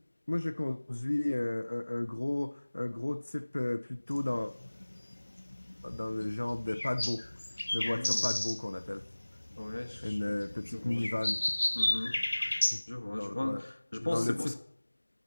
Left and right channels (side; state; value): both; inverted; correlation -1.00